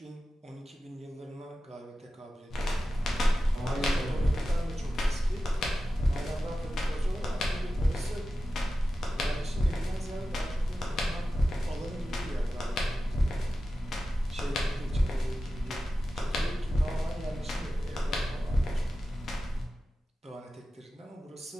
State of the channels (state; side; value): normal; both; correlation 0.93